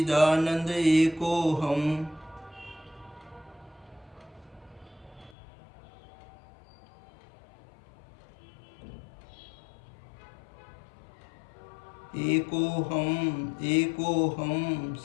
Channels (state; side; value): drops out; right; at 5.4 s